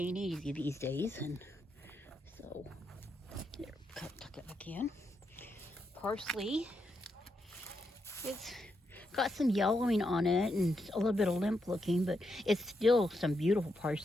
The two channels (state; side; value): normal; both; correlation 0.82